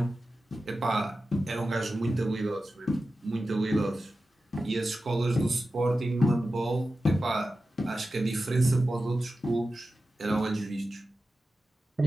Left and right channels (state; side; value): normal; both; correlation 0.93